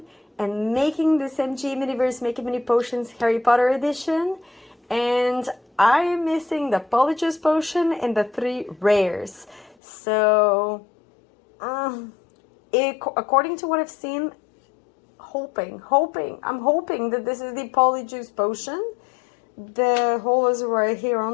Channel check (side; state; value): right; drops out; at 9.8 s